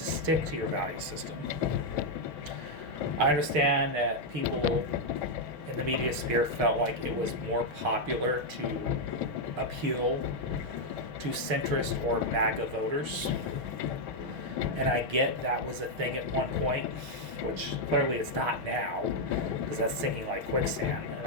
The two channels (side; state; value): left; late; 6.3 ms